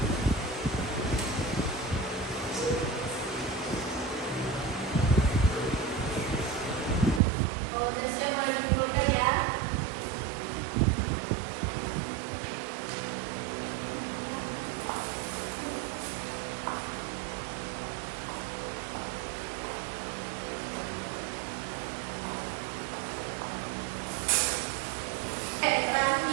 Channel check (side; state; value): left; drops out; at 7.2 s